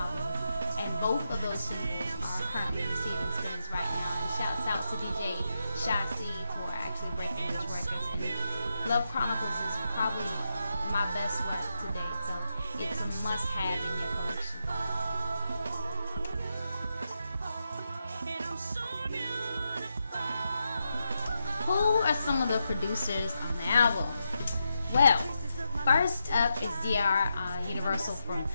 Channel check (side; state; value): both; inverted; correlation -0.85